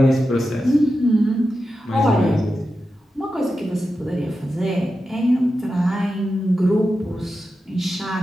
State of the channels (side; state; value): both; normal; correlation 0.91